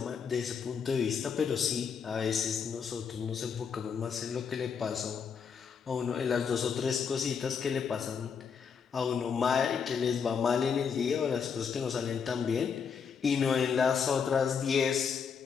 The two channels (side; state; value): right; quieter; 6.5 dB